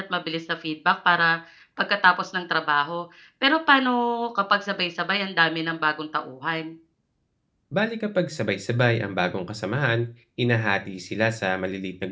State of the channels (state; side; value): identical; both; correlation 1.00